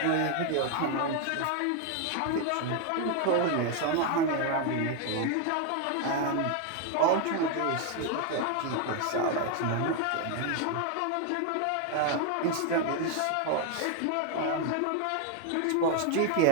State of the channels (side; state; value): both; different; correlation 0.01